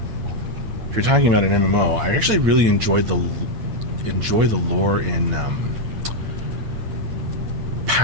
If you're talking about an MMO, I actually really enjoy the lore in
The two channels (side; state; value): left; late; 8.7 ms